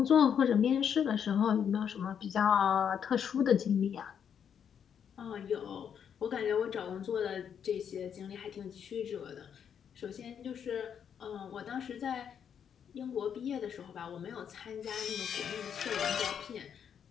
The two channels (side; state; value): right; quieter; 8.0 dB